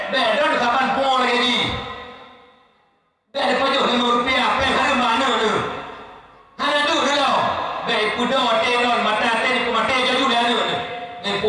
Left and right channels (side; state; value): both; identical; correlation 1.00